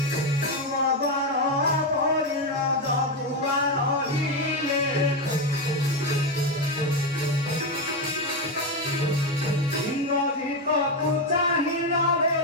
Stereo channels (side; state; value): both; normal; correlation 0.09